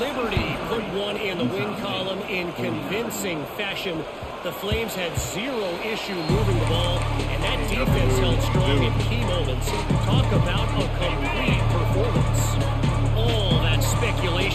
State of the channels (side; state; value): both; identical; correlation 1.00